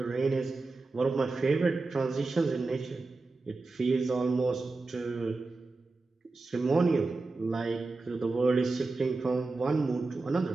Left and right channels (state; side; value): quieter; left; 3.6 dB